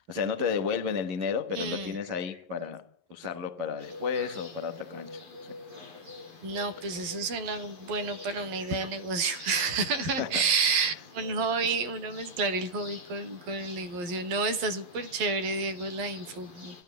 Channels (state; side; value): late; left; 11 ms